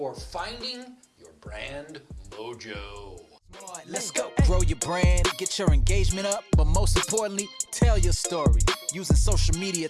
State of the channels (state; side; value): identical; both; correlation 1.00